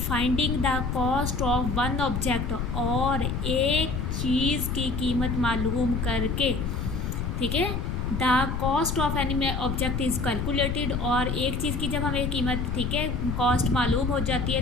the cost of one object, और एक चीज़ की कीमत मालूम करके, ठीक है, the cost of any object is calculated, और एक चीज़ की जब हमें कीमत, ठीक है, कॉस्ट मालूम हो जाती है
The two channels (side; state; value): left; noise; rumble, 1 dB below the sound